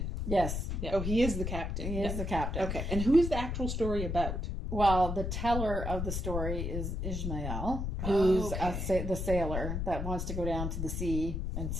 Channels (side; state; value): left; noise; rumble, 2 dB below the sound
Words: Yes. Oh, he is the captain. He is the captain. Okay. And who is the actual story about? Well, the teller of the story is Ishmael, who's the sailor that wants to go down to the sea and